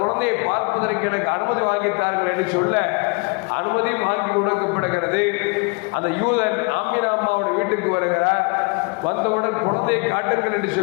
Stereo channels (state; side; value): quieter; right; 32.8 dB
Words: பார்ப்பதற்கு எனக்கு அனுமதி வாங்கித்தார்கள் என்று சொல்ல அனுமதி வாங்கி கொடுக்கப்படுகிறது. அந்த யூதன் ஆமினா அம்மாவுடைய வீட்டுக்கு வருகிறார். வந்தவுடன் குழந்தையை காட்டுங்கள் என்று